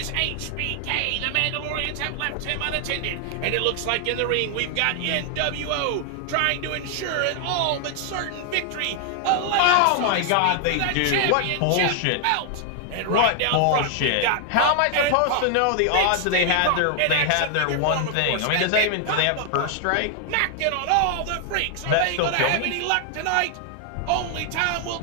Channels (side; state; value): both; different; correlation 0.00